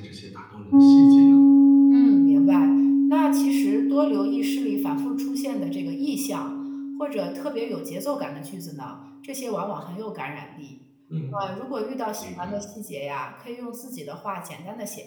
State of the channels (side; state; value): both; identical; correlation 1.00